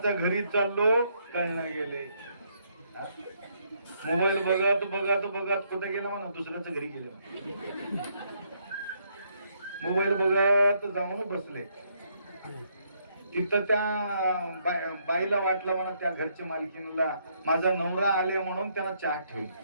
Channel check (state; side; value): inverted; both; correlation -0.72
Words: घरी चाललो कळणं गेले. मोबाईल बघत बघत बघत कुठे गेला म्हणा दुसऱ्याच्या घरी गेले. मोबाईल बघत जाऊन बसले. तिथं त्या बाईला वाटलं म्हणा त्या घरच्या मालकीला माझा नवरा आले म्हणून त्याला चहा ठेवली